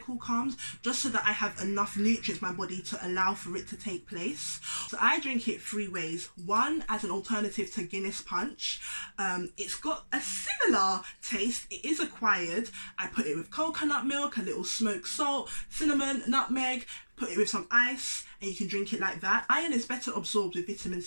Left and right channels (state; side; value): inverted; both; correlation -1.00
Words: comes, just so that I have enough nutrients in my body to allow for it to take place. So I drink it 3 ways. One, as an alternative to Guinness Punch. It's got a similar taste. It is acquired. I put it with coconut milk, a little smoked salt, cinnamon, nutmeg, put it with some ice, and you can drink it like that. Iron is better absorbed with vitamin